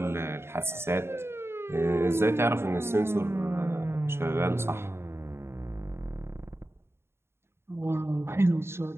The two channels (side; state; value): left; late; 0.12 ms